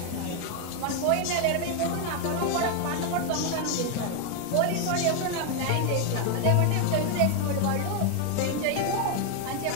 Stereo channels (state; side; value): different; both; correlation 0.01